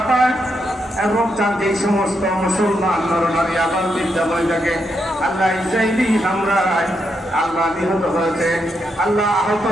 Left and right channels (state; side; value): normal; both; correlation 0.81